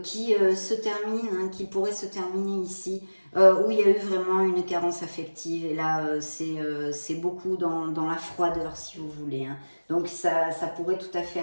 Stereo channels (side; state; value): both; inverted; correlation -1.00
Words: qui se termine, hein, qui pourrait se terminer ici, où il y a eu vraiment une carence affective. Et là, c'est beaucoup dans la froideur, si vous voulez. Hein. Donc ça pourrait tout à fait